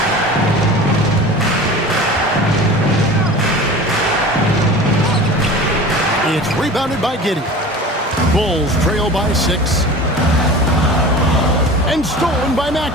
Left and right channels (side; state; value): both; normal; correlation 0.37